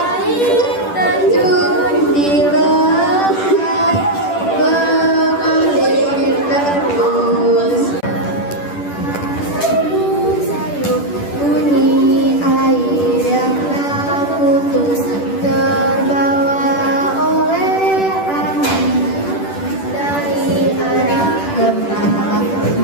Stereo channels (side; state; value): right; late; 10 ms